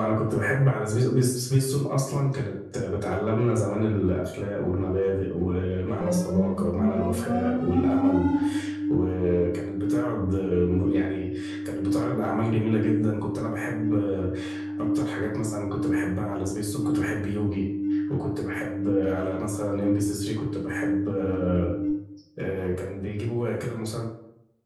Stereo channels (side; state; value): both; identical; correlation 1.00